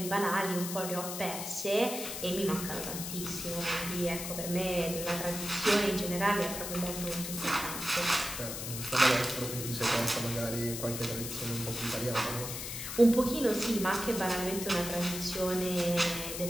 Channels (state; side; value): noise; left; hiss, 6 dB below the sound